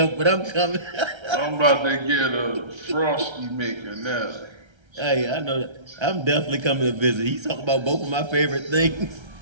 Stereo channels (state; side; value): late; left; 1.3 ms